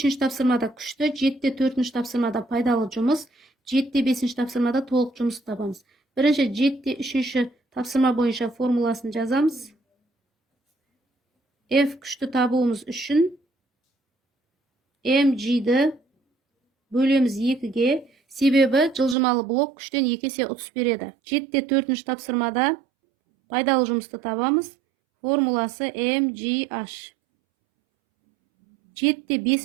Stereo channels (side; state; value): left; drops out; at 19.2 s